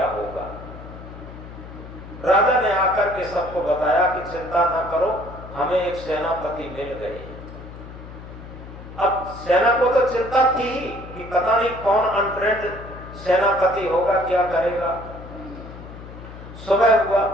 होगा। राजा ने आकर के सबको बताया कि चिंता ना करो, हमें एक सेनापति मिल गए। अब सेना को तो चिंता थी ही कि पता नहीं कौन अनफ्रेंड सेनापति होगा, क्या करेगा। सुबह हुआ,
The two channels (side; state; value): left; noise; hum, 14 dB below the sound